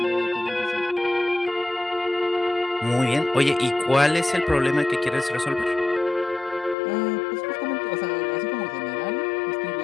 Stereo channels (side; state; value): right; drops out; at 6.8 s